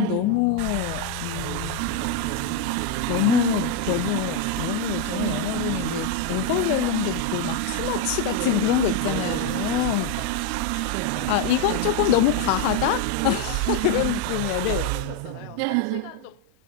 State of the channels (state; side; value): different; both; correlation 0.02